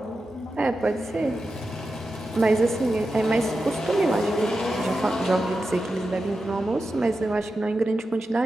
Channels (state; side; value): normal; both; correlation 0.91